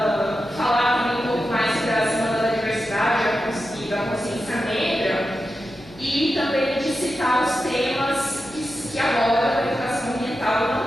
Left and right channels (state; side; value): noise; left; hum, 24 dB below the sound